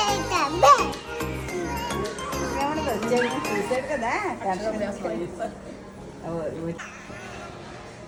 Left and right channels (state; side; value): identical; both; correlation 1.00